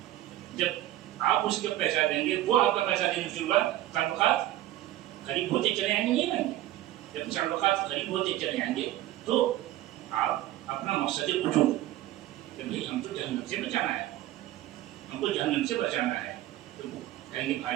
جب آپ اس کو پیسہ دیں گے وہ آپ کا پیسہ دینے شروع ہوا، تعلقات قریب ہوتے چلے آئیں گے. نہیں آئیں گے؟ جب تعلقات قریب ہوتے چلے آئیں گے تو آپ اپنا مقصد وجود کہ بھائی ہم تو جہنم سے بچانا ہے، ہم کو جہنم سے بچانا ہے، تو کہیں گے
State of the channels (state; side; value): quieter; left; 14.5 dB